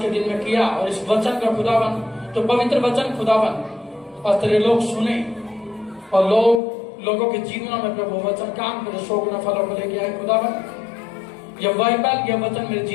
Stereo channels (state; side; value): drops out; right; at 6.6 s